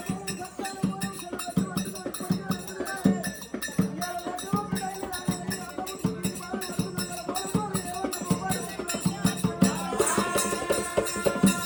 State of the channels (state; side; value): identical; both; correlation 1.00